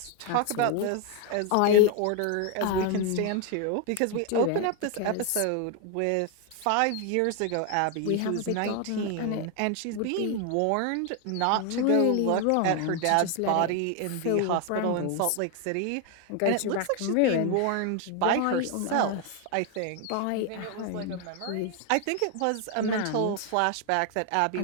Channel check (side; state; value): both; different; correlation 0.01